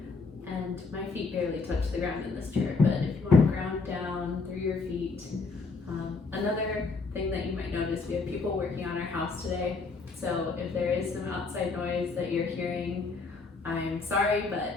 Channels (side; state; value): right; quieter; 4.0 dB